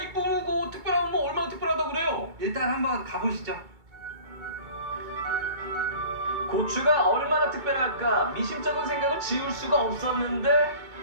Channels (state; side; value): late; left; 2.2 ms